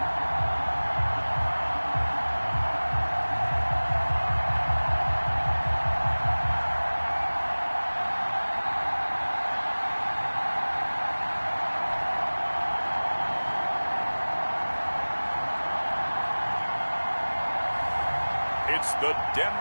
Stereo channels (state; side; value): inverted; both; correlation -1.00